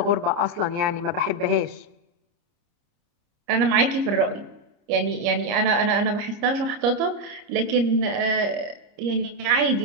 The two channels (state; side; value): late; left; 30 ms